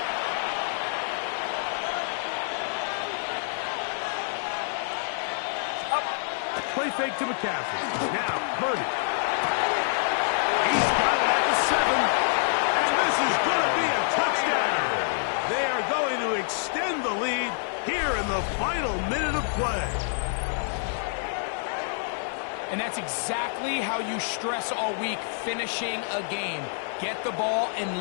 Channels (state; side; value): silent; right; digital silence